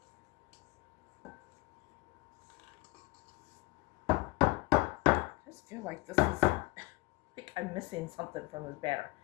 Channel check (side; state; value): right; quieter; 22.8 dB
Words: I just feel like this is, like I'm missing something from this batter.